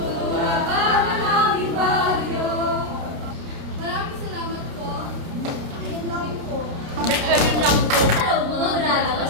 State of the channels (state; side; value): late; left; 29 ms